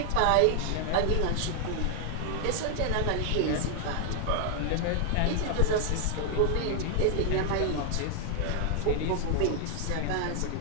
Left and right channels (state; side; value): different; both; correlation 0.00